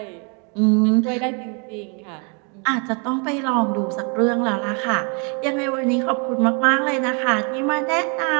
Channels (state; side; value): quieter; left; 35.6 dB